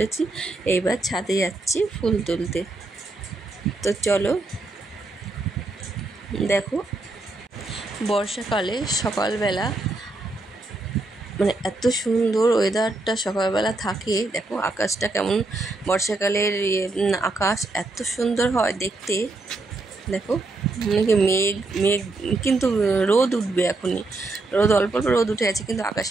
এইবার ছাদে যাচ্ছি ফুল তুলতে। তো চলো, দেখো বর্ষাকালে সকালবেলা মানে এত সুন্দর ওয়েদারটা সকালবেলা থাকে। দেখো আকাশটা কেমন, বর্ষাকালের আকাশ এত সুন্দর হয় দেখতে। দেখো মানে মেঘ মেঘ কিন্তু রোদ উঠবে এখনই, রোদ অল্প অল্প রোদ উঠে আছে, কিন্তু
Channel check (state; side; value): quieter; left; 3.1 dB